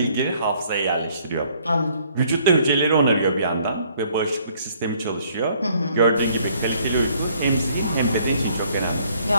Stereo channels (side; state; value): both; inverted; correlation -0.63